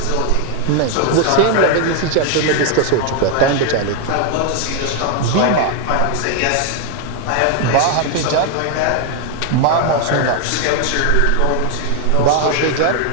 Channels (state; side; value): different; both; correlation 0.00